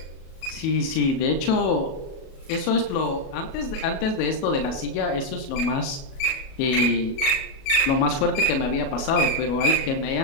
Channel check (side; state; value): right; late; 37 ms